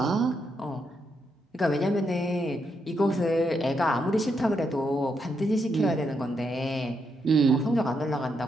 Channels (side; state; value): both; normal; correlation 0.80